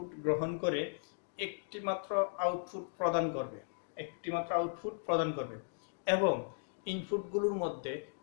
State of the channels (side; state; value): right; silent; digital silence